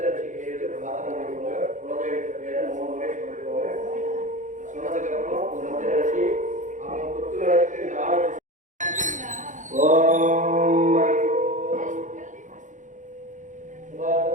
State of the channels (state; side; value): late; left; 0.36 ms